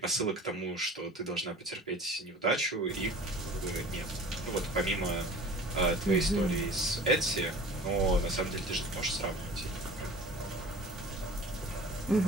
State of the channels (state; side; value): normal; both; correlation 0.42